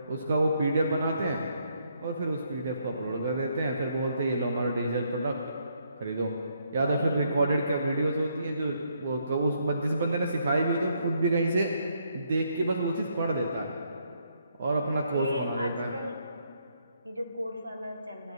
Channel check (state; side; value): inverted; both; correlation -0.73